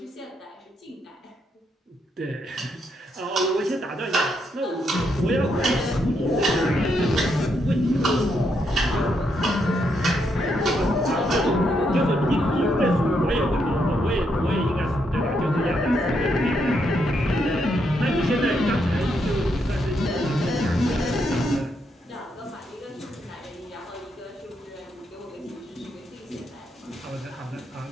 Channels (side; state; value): both; normal; correlation 0.78